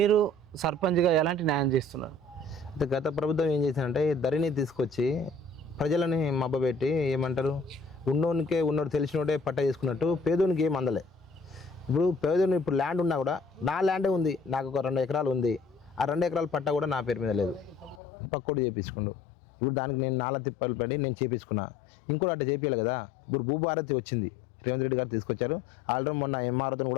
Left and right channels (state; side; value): drops out; right; at 18.0 s